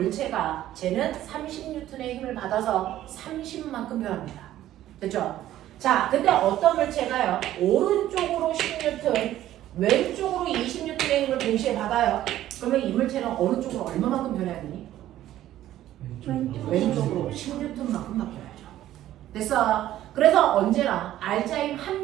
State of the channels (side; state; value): left; quieter; 13.3 dB